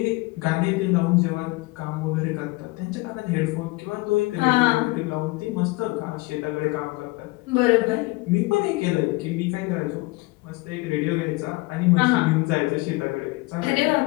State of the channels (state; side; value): quieter; right; 23.1 dB